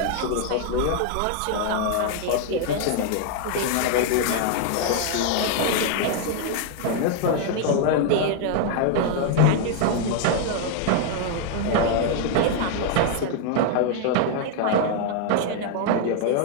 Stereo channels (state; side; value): different; both; correlation 0.00